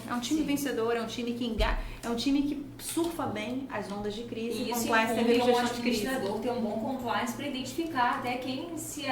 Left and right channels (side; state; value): both; identical; correlation 1.00